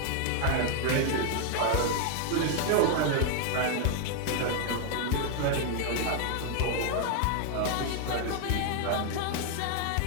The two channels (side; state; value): both; different; correlation 0.00